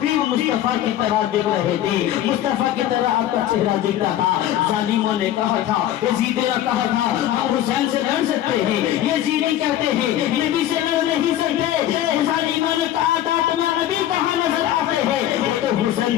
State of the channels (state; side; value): quieter; right; 12.3 dB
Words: مصطفیٰ کی طرح دیکھ رہے تھے، مصطفیٰ کی طرح آپ کا چہرہ دیکھتا تھا۔ ظالموں نے کہا تھا، یزید نے کہا تھا ہم حسین سے لڑ سکتے ہیں، یزیدی کہتے ہیں نبی سے لڑ نہیں سکتے۔ ظالموں نے کہا تھا تمہارا نبی کہاں نظر آتے ہیں؟ تو حسین